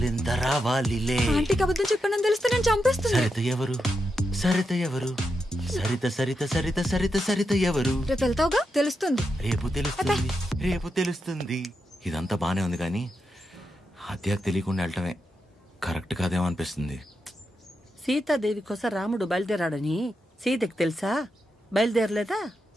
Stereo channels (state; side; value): normal; both; correlation 0.86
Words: రావాలిలే. ఆంటీకి అబద్ధం చెప్పానని తెలిస్తే నేను చంపేస్తుంది. సరిత ఎవరు, సరిత ఎవరు, సరిత సరిత సరిత సరిత సరిత ఎవరు? రేపు వెళ్తావుగా తెలుస్తుంది. రేపు తెలుస్తుంది, రేపు తెలుస్తుంది. ఇదంతా బానే ఉంది కానీ హత్యకు తెలియకుండా వెళ్ళటమే కరెక్ట్ కాదేమో అనిపిస్తుంది. సీతాదేవి కోసం రాముడు బయలుదేరాడని సీతకి తెలుసా? బయలుదేరలేదా?